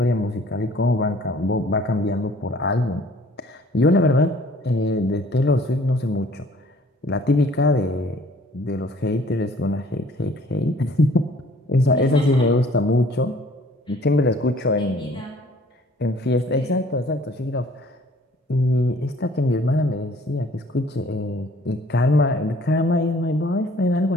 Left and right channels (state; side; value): normal; both; correlation 0.55